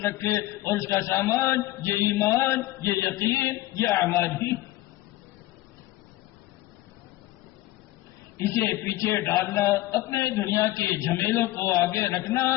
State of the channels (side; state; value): right; quieter; 16.9 dB